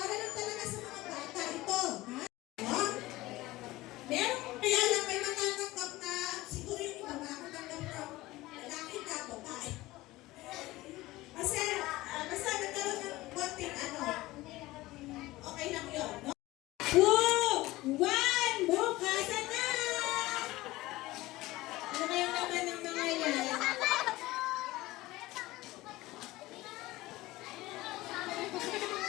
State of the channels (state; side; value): quieter; right; 18.6 dB